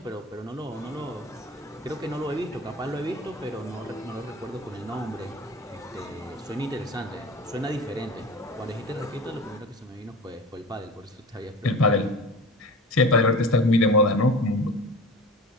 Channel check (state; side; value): normal; both; correlation 0.35